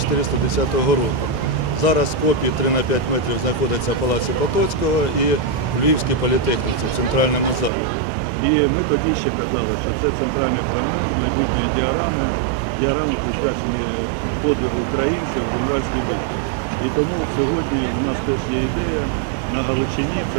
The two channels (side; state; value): left; drops out; at 7.7 s